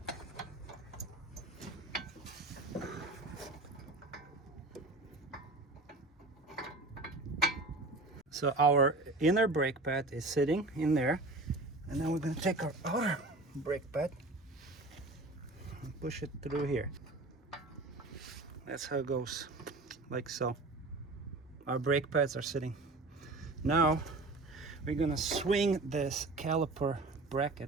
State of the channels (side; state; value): left; quieter; 3.1 dB